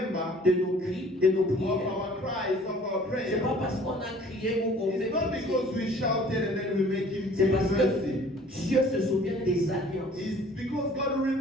de nos cris, de nos of prières. our cries, of our C'est prayers? pas parce qu'on a crié ou qu'on fait It's not pitié. because we shouted and then we make Him C'est parce mercy. que Dieu se souvient des alliances. It's because God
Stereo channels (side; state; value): both; normal; correlation 0.52